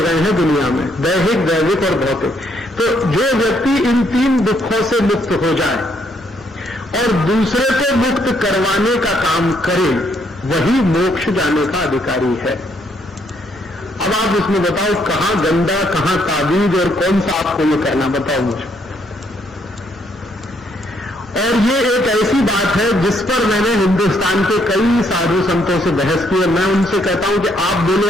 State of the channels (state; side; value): normal; both; correlation 0.71